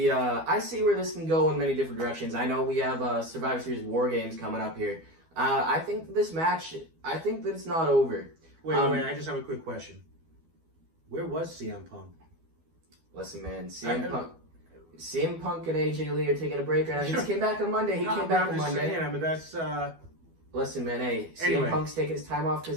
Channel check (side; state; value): left; late; 12 ms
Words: where this can go in many different directions. I know we have Survivor Series War Games coming up here. I think this match, I think that it's not over. Wait, I just have a quick question. Where was CM Punk? Listen, man, CM Punk and AJ Lee are taking a break right now. He just came back on Monday. That's. Listen, man, hey, anyway. CM Punk's taking his time off because